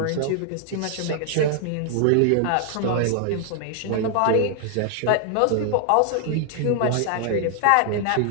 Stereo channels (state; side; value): different; both; correlation 0.00